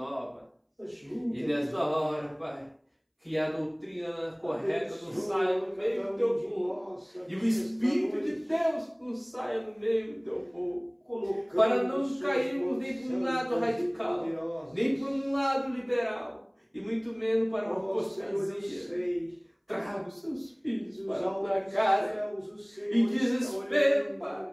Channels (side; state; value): both; identical; correlation 1.00